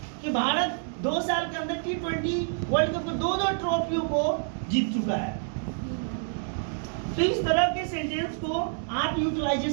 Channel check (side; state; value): left; silent; digital silence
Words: कि भारत 2 साल के अंदर T20 वर्ल्ड कप को 2 ट्रॉफियों को जीत चुका है। तो इस तरह के सेंटेंस को आप